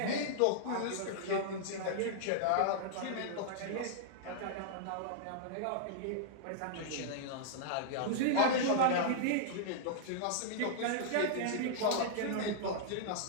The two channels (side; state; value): both; different; correlation -0.01